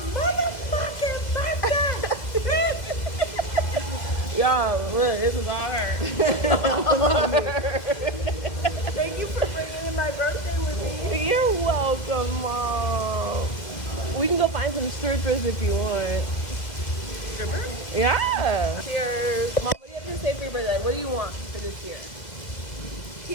motherfucking birthday. Y'all, look, this is on her. Thank you for bringing in my birthday with me. You're welcome, Mom. We can go find some strippers if you want. Stripper? Yeah. Cheers. Mom, what do you have to say for your birthday? What do you want for this year?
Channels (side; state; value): right; late; 2.1 ms